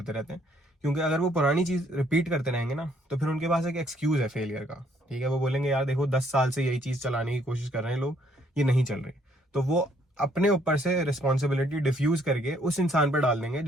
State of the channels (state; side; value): normal; both; correlation 0.67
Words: रहते हैं, क्योंकि अगर वो पुरानी चीज रिपीट करते रहेंगे ना, तो फिर उनके पास एक एक्सक्यूज है फेलियर का, ठीक है। वो बोलेंगे यार देखो 10 साल से यही चीज चलाने की कोशिश कर रहे हैं लोग, ये नहीं चल रही, तो वो अपने ऊपर से रिस्पॉन्सिबिलिटी डिफ्यूज करके उस इंसान पर डाल देंगे